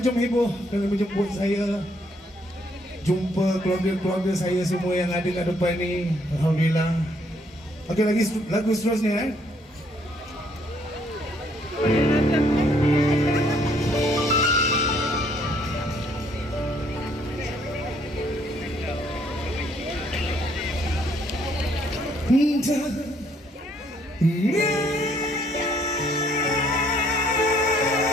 Jom Heboh kerana menjemput saya. Jumpa keluarga-keluarga saya semua yang ada kat depan ni. Alhamdulillah. Okey, lagi lagu seterusnya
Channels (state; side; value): normal; both; correlation 0.67